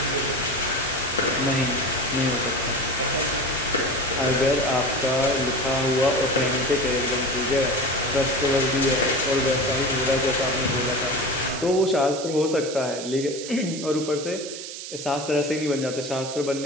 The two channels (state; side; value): noise; right; hiss, 9 dB below the sound